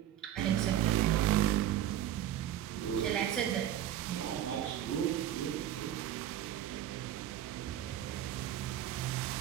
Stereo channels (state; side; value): quieter; left; 11.4 dB